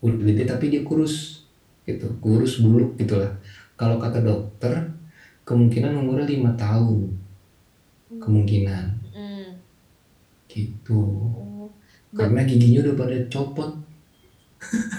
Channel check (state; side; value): identical; both; correlation 1.00